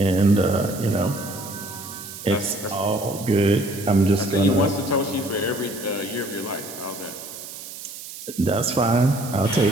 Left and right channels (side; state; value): right; noise; hiss, 12 dB below the sound